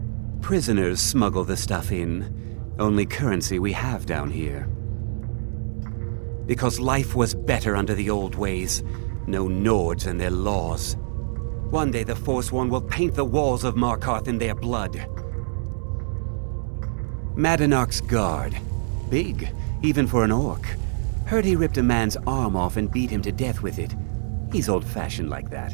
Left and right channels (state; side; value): silent; left; digital silence